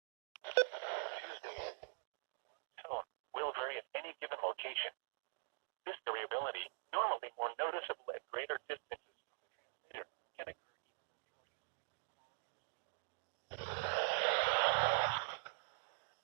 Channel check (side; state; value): left; silent; digital silence